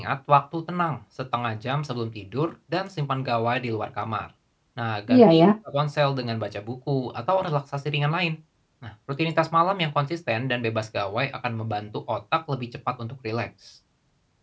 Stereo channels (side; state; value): both; identical; correlation 1.00